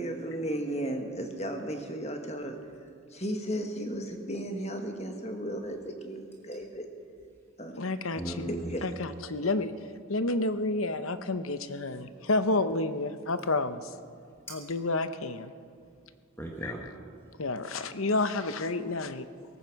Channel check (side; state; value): both; normal; correlation 0.00